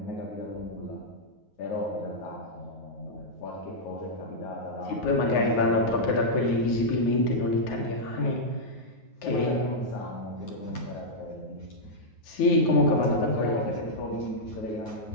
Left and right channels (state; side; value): late; right; 9.4 ms